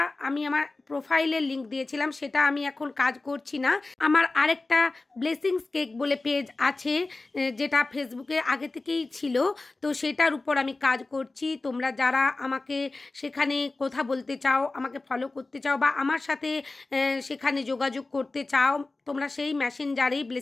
আমি আমার প্রোফাইলের লিঙ্ক দিয়েছিলাম, সেটা আমি এখন কাজ করছি না। আমার আরেকটা ব্লেসিংস কেক বলে পেজ আছে, যেটা ফেসবুকে আগে থেকেই ছিল, তো সেটার উপর আমি কাজ করছি। তোমরা যারা আমাকে সেখানে কথা বলতে চাও, আমাকে ফলো করতে চাও বা আমার সাথে সেখানে যোগাযোগ করতে চাও, তোমরা সেই মেসেঞ্জারেই,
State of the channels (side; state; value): right; quieter; 3.3 dB